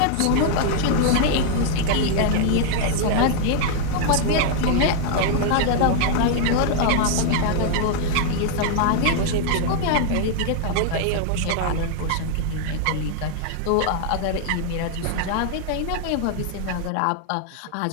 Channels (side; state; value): both; different; correlation 0.00